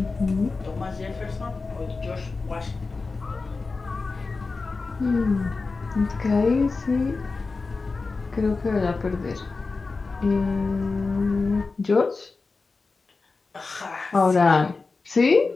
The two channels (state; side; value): quieter; right; 4.0 dB